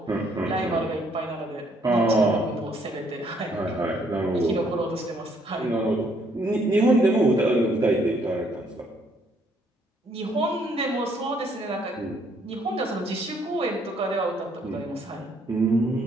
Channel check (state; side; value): normal; both; correlation 0.67